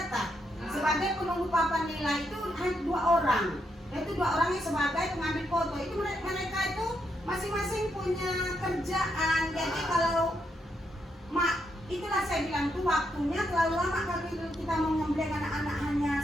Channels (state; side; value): normal; both; correlation 0.79